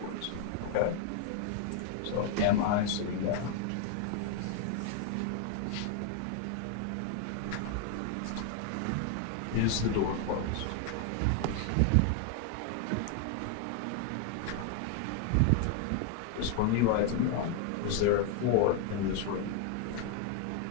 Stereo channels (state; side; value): different; both; correlation 0.00